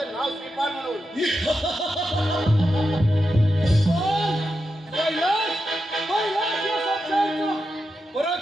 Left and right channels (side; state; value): both; normal; correlation 0.88